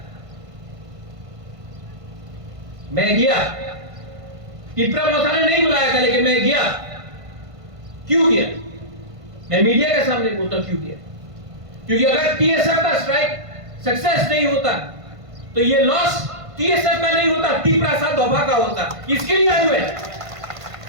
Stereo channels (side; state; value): left; late; 1.5 ms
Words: मैं गया। टिपरा मौसा ने नहीं बुलाया था, लेकिन मैं गया। क्यों गया? मैं मीडिया के सामने बोलता क्यों गया। क्योंकि अगर टीएसएफ का स्ट्राइक सक्सेस नहीं होता तो ये लॉस टीएसएफ का नहीं होता, टिपरा सा दोभा का होता। इसके लिए आए हुए